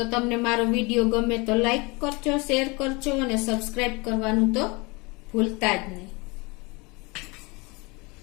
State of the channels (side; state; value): right; quieter; 26.9 dB